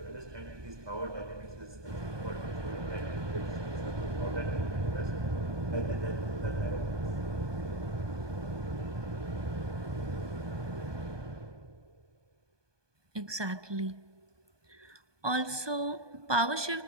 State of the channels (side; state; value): left; late; 1.2 ms